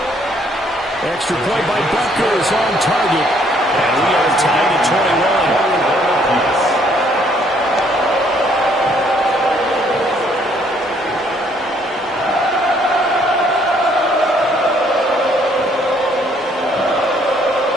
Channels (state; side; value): normal; both; correlation 0.65